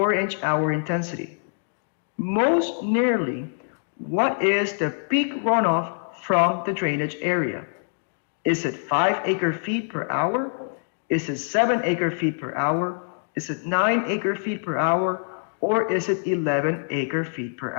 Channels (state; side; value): silent; right; digital silence